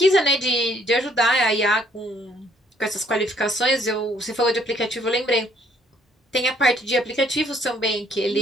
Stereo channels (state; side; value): normal; both; correlation 0.64